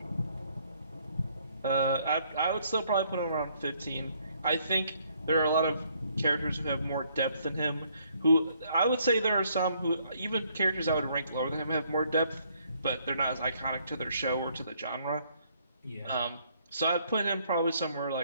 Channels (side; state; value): both; inverted; correlation -0.67